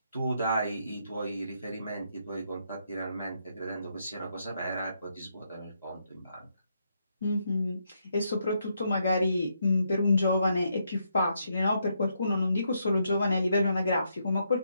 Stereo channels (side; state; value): both; inverted; correlation -0.78